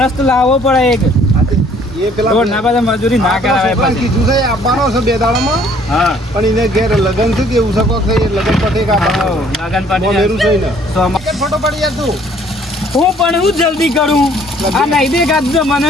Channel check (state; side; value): normal; both; correlation 0.59